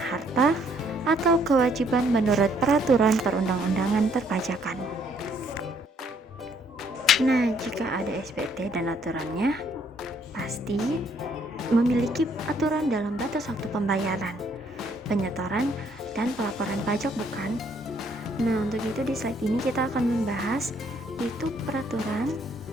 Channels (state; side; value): normal; both; correlation 0.67